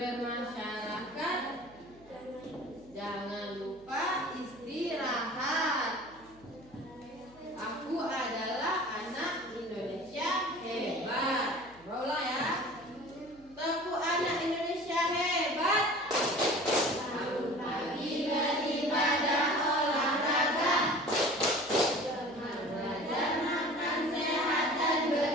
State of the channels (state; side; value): noise; right; hum, 26 dB below the sound